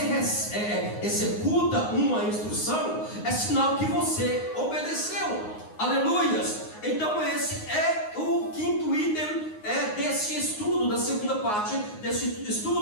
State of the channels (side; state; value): right; late; 9.6 ms